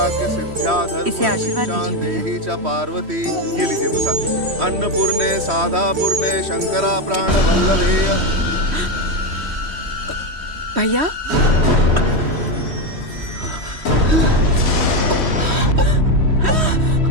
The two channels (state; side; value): late; left; 3.1 ms